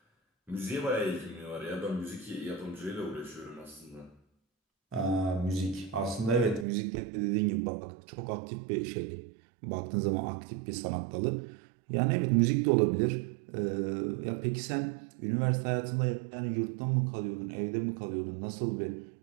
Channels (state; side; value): drops out; left; at 6.7 s